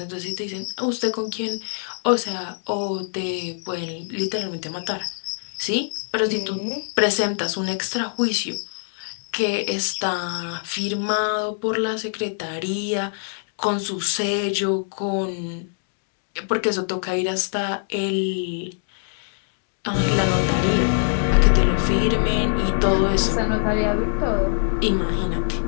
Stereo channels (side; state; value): right; silent; digital silence